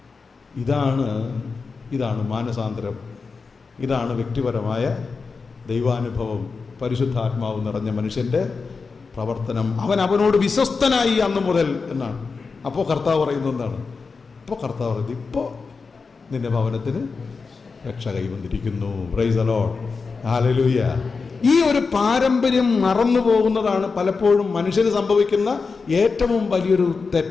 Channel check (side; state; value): right; quieter; 4.7 dB